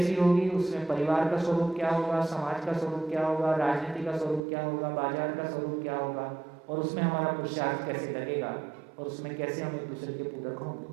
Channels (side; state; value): left; drops out; at 4.4 s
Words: होगी, उसमें परिवार का स्वरूप क्या होगा, समाज का स्वरूप क्या होगा, राजनीति का स्वरूप क्या होगा, बाजार का स्वरूप क्या होगा, और उसमें हमारा पुरुषार्थ कैसे लगेगा, और उसमें कैसे हम एक दूसरे के पूरक